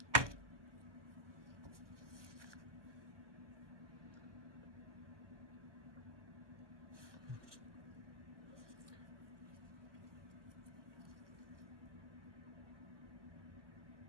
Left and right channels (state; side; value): late; left; 1.0 ms